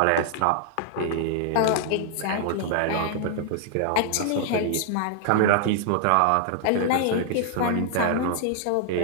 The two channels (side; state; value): both; different; correlation -0.01